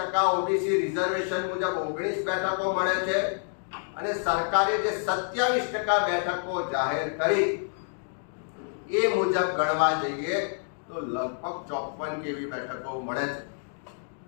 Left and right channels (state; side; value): silent; right; 59 dB below the other